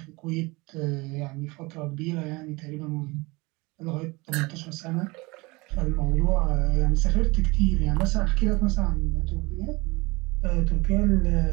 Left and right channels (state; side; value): quieter; left; 24.3 dB